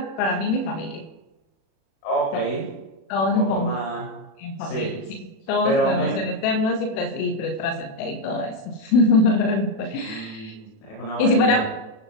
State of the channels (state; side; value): late; right; 37 ms